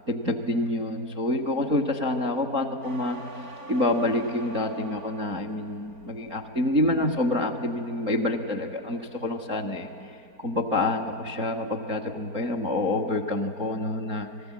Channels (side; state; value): left; late; 4.4 ms